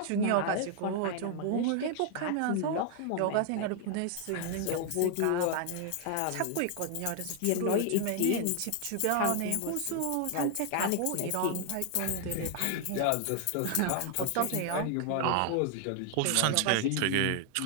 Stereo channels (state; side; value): different; both; correlation 0.00